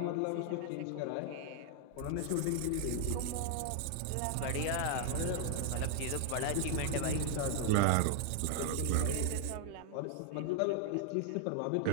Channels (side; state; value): both; different; correlation 0.00